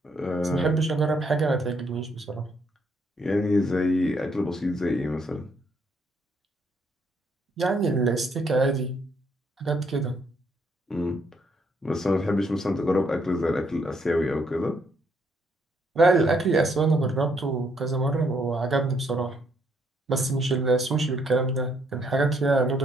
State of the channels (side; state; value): both; normal; correlation 0.71